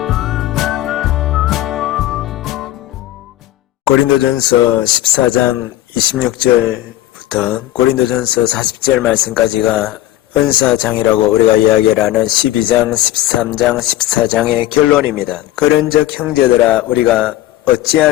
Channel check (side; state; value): right; quieter; 14.5 dB